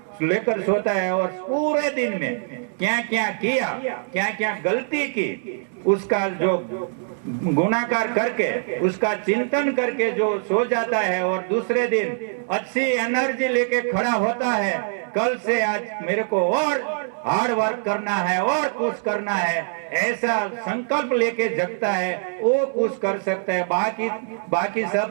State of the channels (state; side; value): silent; left; digital silence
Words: लेकर सोता है और पूरे दिन में क्या क्या किया, क्या क्या गलती की, उसका जो गुणाकार करके उसका चिंतन करके जो सो जाता है और दूसरे दिन अच्छी एनर्जी लेके खड़ा होता है, कल से आज मेरे को और हार्ड वर्क करना है और कुछ करना है, ऐसा संकल्प लेके जगता है, वो कुछ कर सकता है। बाकी